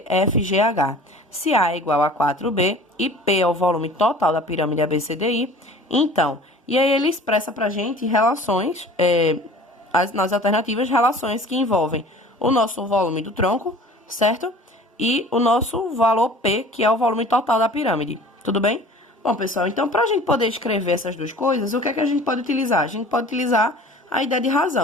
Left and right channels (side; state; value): both; normal; correlation 0.44